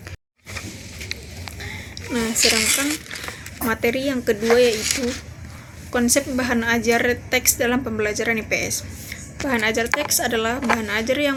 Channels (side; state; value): both; identical; correlation 1.00